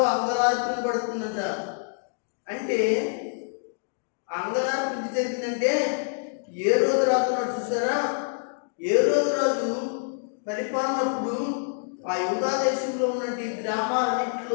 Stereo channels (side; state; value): right; silent; digital silence